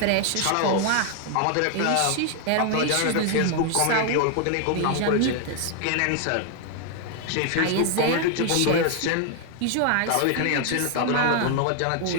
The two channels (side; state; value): both; different; correlation 0.00